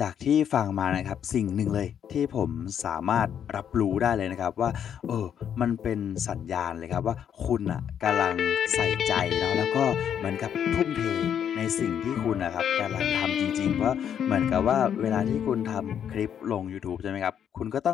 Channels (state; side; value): quieter; right; 8.8 dB